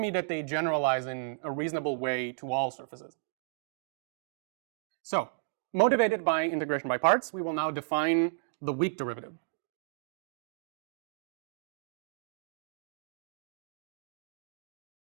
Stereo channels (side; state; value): left; silent; digital silence